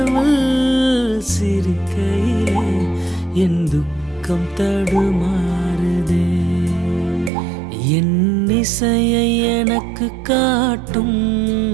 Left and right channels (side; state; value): left; drops out; at 7.3 s